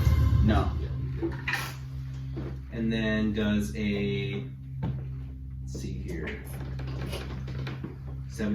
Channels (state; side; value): identical; both; correlation 1.00